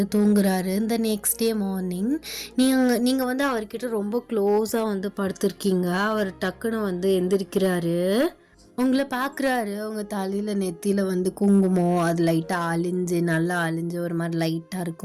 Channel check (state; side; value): identical; both; correlation 1.00